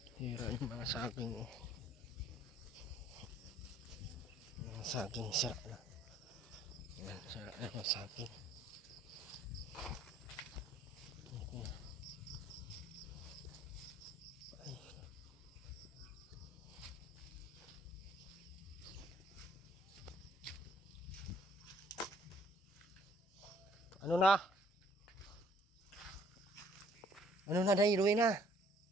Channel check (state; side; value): normal; both; correlation 0.59